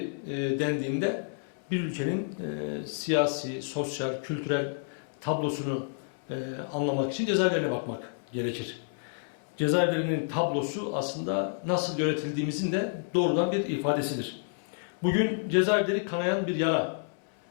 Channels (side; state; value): right; silent; 58 dB below the other